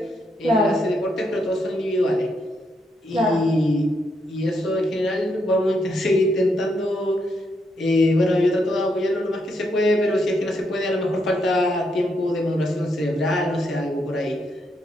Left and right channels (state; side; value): normal; both; correlation 0.78